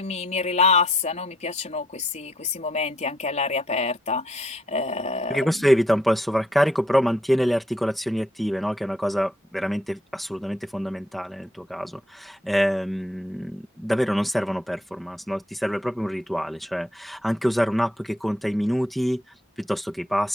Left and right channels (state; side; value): normal; both; correlation 0.70